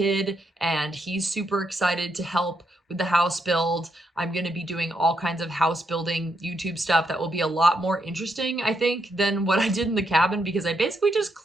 and he's super excited to help with the house build. I'm going to be doing all kinds of house building YouTube stuff that will be a lot more interesting, I think, than what I did in the cabin, because I basically just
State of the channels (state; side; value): normal; both; correlation 0.79